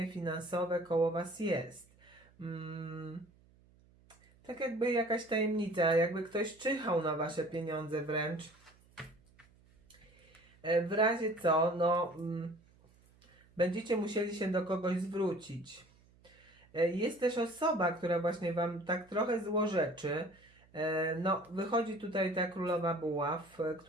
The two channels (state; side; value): noise; right; hum, 29 dB below the sound